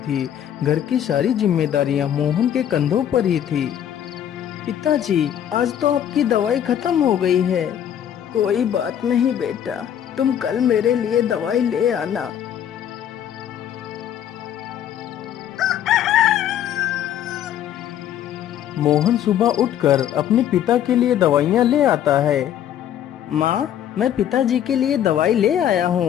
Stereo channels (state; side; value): quieter; right; 10.2 dB